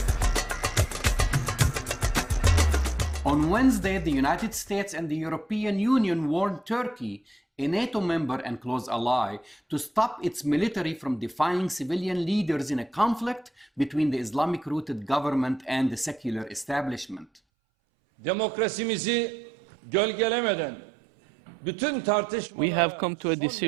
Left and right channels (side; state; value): left; drops out; at 17.4 s